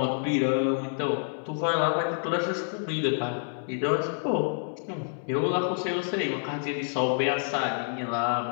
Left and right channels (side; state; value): right; silent; 59 dB below the other